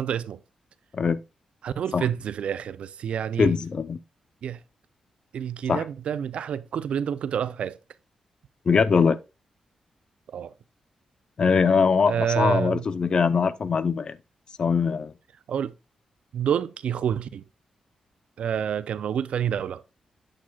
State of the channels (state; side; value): normal; both; correlation 0.76